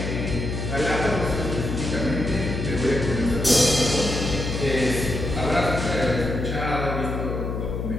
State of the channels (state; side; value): noise; left; hum, 3 dB below the sound